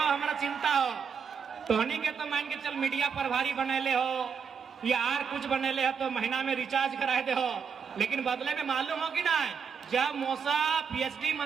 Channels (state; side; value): quieter; left; 6.5 dB